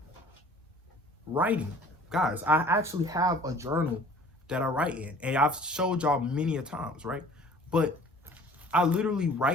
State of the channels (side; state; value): both; normal; correlation 0.49